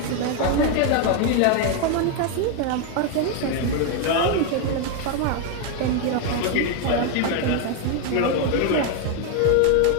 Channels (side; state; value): both; different; correlation 0.01